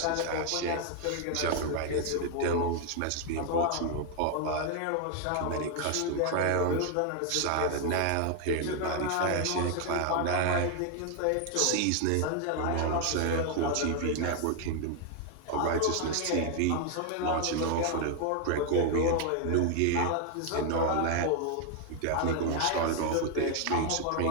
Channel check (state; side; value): different; both; correlation 0.00